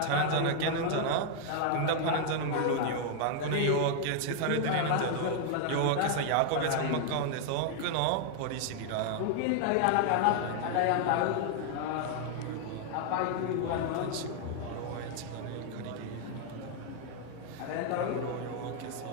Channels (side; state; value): both; different; correlation 0.00